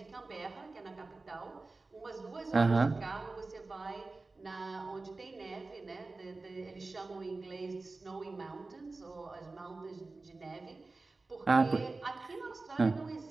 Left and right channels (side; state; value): left; quieter; 3.5 dB